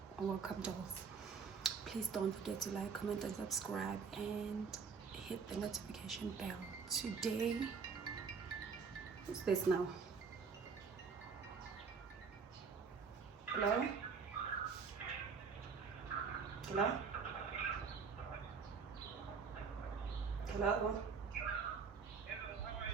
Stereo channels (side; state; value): left; quieter; 5.6 dB